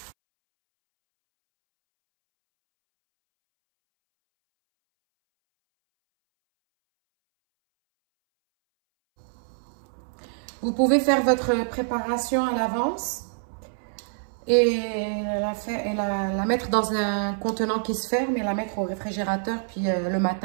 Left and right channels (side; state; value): left; silent; 61 dB below the other